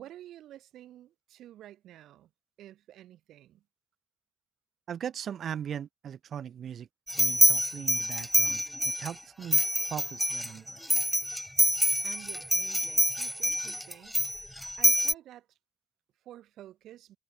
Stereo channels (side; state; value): both; normal; correlation 0.98